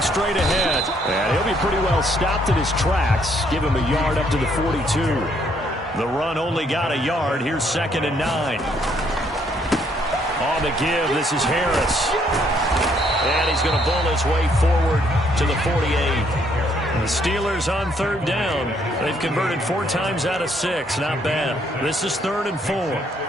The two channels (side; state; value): both; normal; correlation 0.68